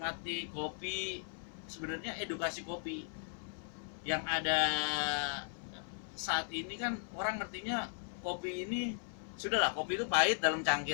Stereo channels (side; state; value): right; silent; 53 dB below the other